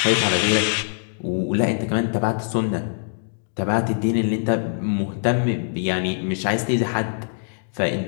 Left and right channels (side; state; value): right; silent; digital silence